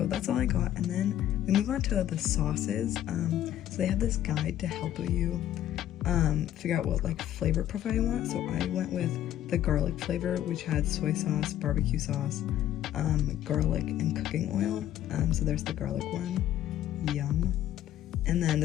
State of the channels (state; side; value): quieter; right; 12.1 dB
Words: that's all I got. And then we move on to the sauces. So they have this guide to help you figure out what like flavor profile you want. So I went with the garlic flavor, which had soy sauce, barbecue sauce, garlic, and cooking oil. So there's the garlic one. Yum. And then